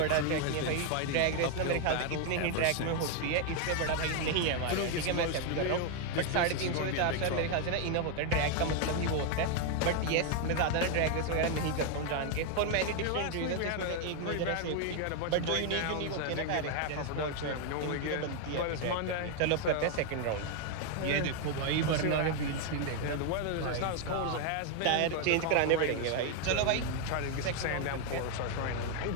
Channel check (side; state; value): both; different; correlation 0.01